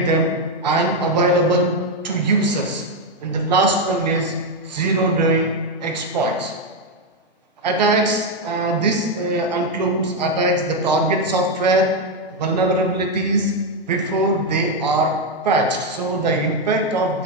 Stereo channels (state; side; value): normal; both; correlation 0.04